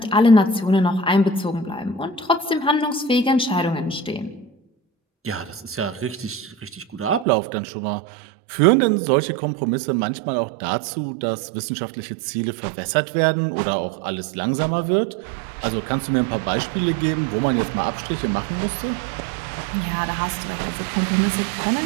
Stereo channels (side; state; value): left; drops out; at 7.2 s